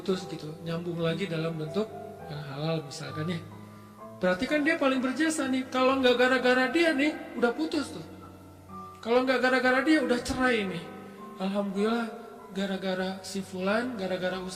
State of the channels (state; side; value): identical; both; correlation 1.00